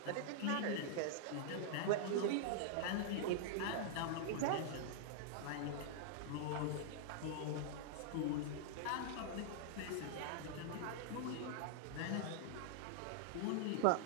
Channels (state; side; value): different; both; correlation -0.01